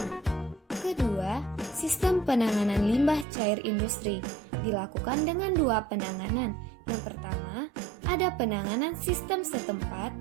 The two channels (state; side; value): drops out; left; at 3.2 s